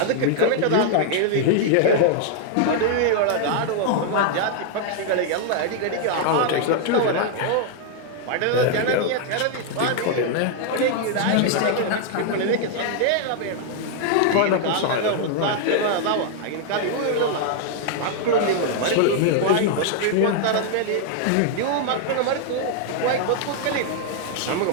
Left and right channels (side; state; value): both; different; correlation 0.00